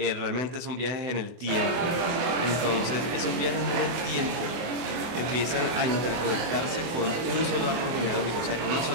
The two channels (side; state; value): left; late; 24 ms